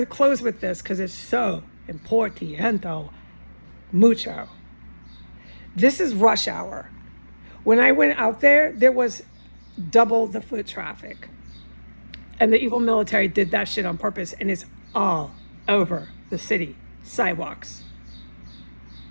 close with this because it's so importante, mucho. This is rush hour. When I went out there, there was double the foot traffic. And the evil military did that shit on purpose, and it's all over the city sidewalks.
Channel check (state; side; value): inverted; both; correlation -1.00